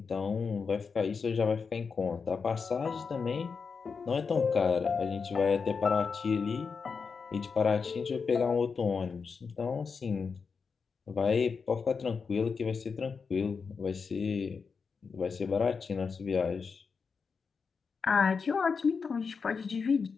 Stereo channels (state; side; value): quieter; right; 5.4 dB